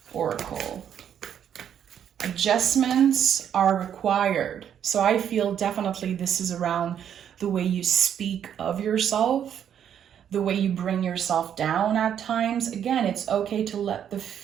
Oracle. Adjustments are required. So I feel definitely this is around the way you speak of yourself, the way you bring yourself down at times. Again, it's okay to let the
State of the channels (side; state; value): left; quieter; 9.2 dB